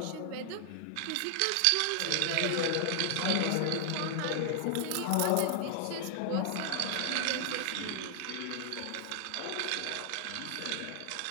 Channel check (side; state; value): both; different; correlation 0.00